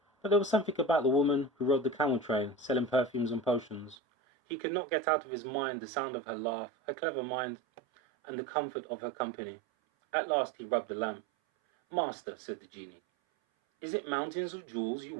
But there was something about the woman who rode the camel train, selling perfumes and potions. He could not get out of his mind the sound of her laugh, her clever mind, and the comfort of her company. At last he rubbed the lamp. "Master," said the genie, "is it mountains of jewels you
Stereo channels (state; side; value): drops out; left; at 4.0 s